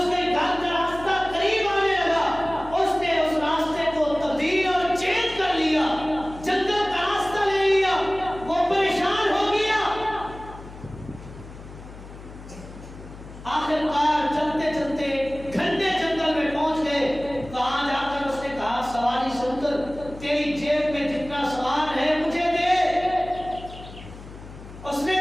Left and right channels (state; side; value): noise; left; hum, 16 dB below the sound